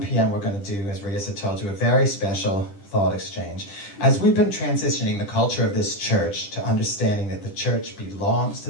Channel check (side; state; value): right; late; 10 ms